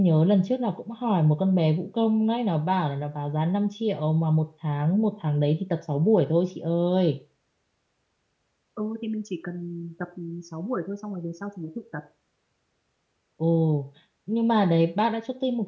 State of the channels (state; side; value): identical; both; correlation 1.00